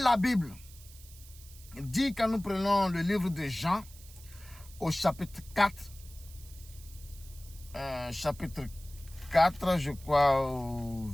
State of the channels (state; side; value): noise; right; hiss, 20 dB below the sound